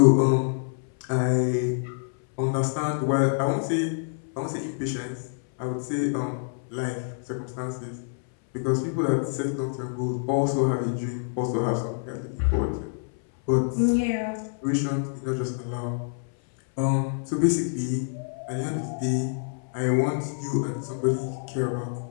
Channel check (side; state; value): right; silent; 60 dB below the other